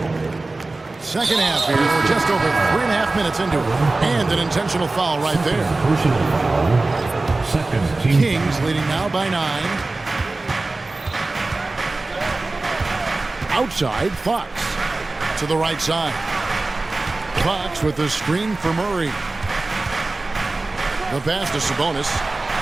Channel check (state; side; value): quieter; left; 3.2 dB